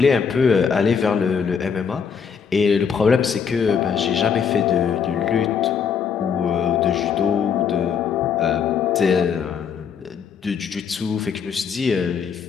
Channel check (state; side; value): quieter; right; 6.7 dB